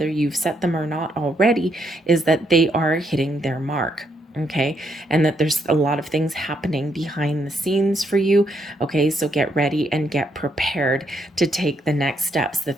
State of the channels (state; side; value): normal; both; correlation 0.75